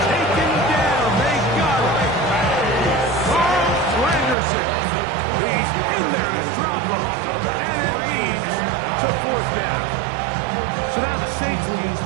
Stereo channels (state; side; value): drops out; left; at 4.4 s